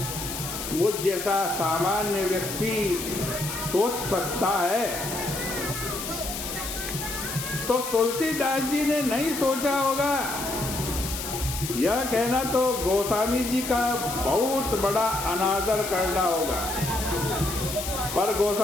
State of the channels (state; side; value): noise; left; hiss, 6 dB below the sound